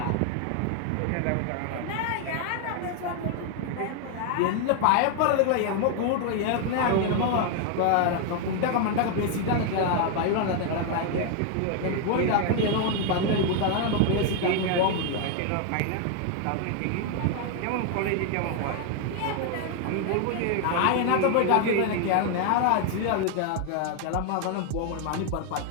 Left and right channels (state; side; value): different; both; correlation 0.00